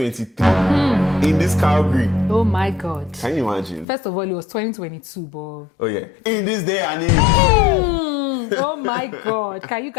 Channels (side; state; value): right; drops out; at 3.9 s